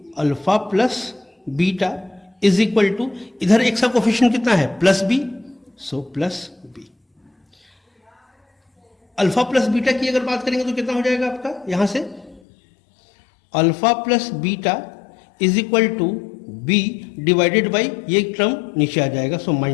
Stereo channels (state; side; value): drops out; right; at 12.4 s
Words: alpha plus beta is equal to, इधर x का कोफिशिएंट कितना है plus b, so plus b। Alpha plus beta की अगर बात करेंगे तो कितना हो जाएगा आपका, यहां से alpha plus beta is equal to b divided by, ये टर्म नीचे आ जाएगा, सो